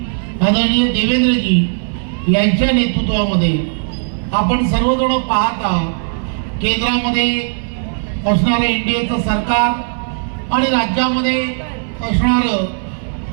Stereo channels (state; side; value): silent; left; 59 dB below the other